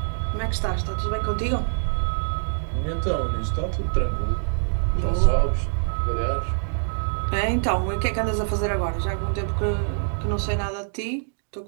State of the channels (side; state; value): left; silent; digital silence